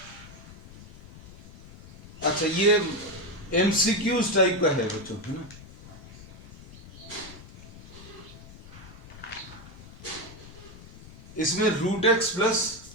अच्छा ये एमसीक्यूज टाइप का है बच्चों, है ना। इसमें root x plus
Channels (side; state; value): left; noise; rumble, 18 dB below the sound